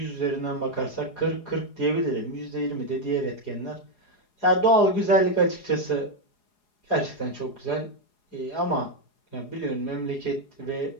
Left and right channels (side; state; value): right; late; 4.8 ms